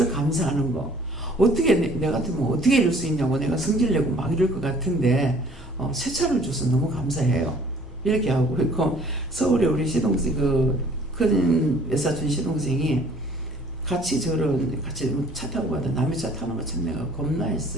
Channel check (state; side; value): normal; both; correlation 0.55